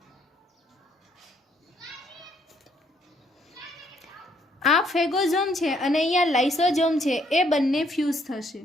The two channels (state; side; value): normal; both; correlation 0.68